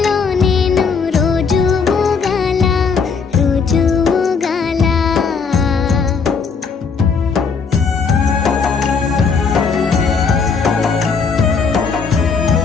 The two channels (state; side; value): quieter; right; 5.4 dB